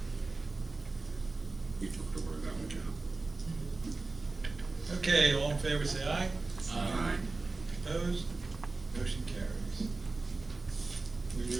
you took the word out of my mouth. Okay, all in favor, say aye. Aye. Opposed? Motion carries. We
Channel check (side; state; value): left; quieter; 3.5 dB